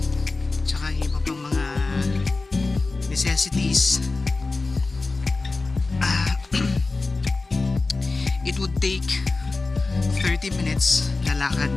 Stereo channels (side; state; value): right; quieter; 3.6 dB